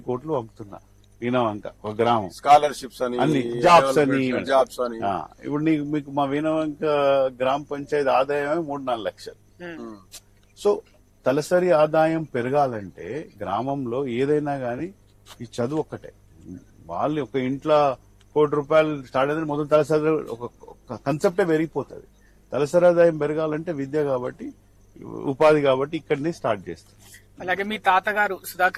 కోట్లు పంపుతున్నా వీణవంక ఒక గ్రామం, స్కాలర్షిప్స్ అని, అన్ని జాబ్స్ అని. ఇప్పుడు మీకు మా వీణవంక గ్రామ పంచాయతీ ఆదాయమే 3-4 లక్షలు. సో తలసరి ఆదాయం పెరగాలంటే గ్రామంలో ఏదైనా గానీ ఈ చదువు ఒక్కటే. వాళ్ళు ఒక ఇంట్లో ₹1 కోటి స్టార్ట్ అయితే మొదటి తలసరి ఒక కన్సెప్టే పెరిగిపోతుంది. తలసరి ఆదాయం పెరగాలంటే విద్య కాబట్టి, ఉపాధి కాబట్టి ఇక్కడనే స్టార్ట్ చేస్తారు. అలాగే మీ తాతగారు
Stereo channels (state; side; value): identical; both; correlation 1.00